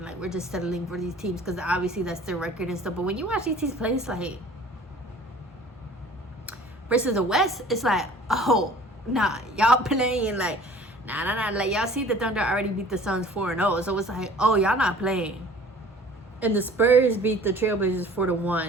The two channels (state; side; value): normal; both; correlation 0.49